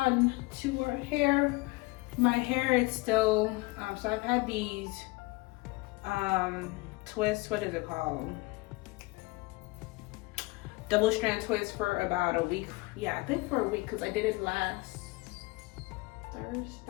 to our hair. My hair is still, so I've had these twists, what is it called? Double strand twists for about a week. Yeah, I think for a week, because I did it last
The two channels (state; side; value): quieter; right; 23.5 dB